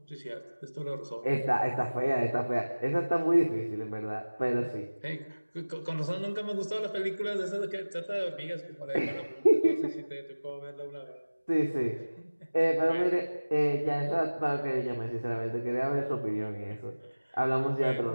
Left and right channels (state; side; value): inverted; both; correlation -1.00